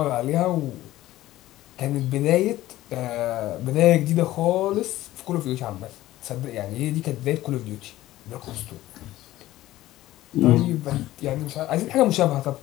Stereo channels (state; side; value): quieter; right; 15.6 dB